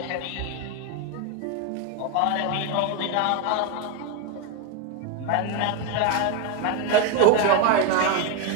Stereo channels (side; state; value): both; different; correlation 0.02